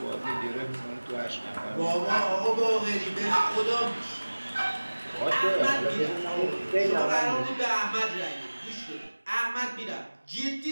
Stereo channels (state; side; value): inverted; both; correlation -1.00